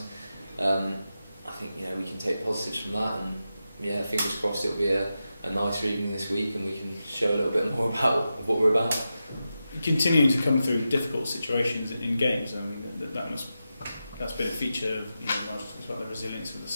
I think we can take positives from that, and fingers crossed it'll be a nicer evening this week and we can show a little bit more about what we're about. Continuing to come through difficult situations in games, I mean that's been a feature of Nigel talks about the resilience of the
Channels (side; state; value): both; inverted; correlation -0.90